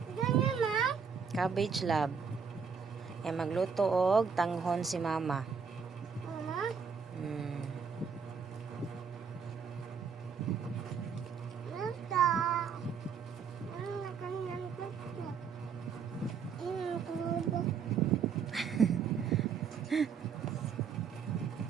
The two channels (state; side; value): quieter; left; 6.3 dB